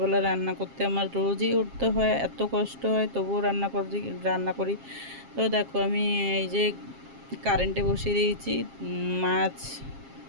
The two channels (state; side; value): late; left; 7.4 ms